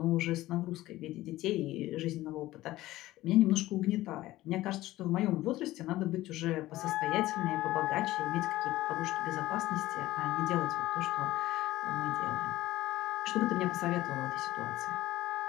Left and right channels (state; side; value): quieter; right; 16.5 dB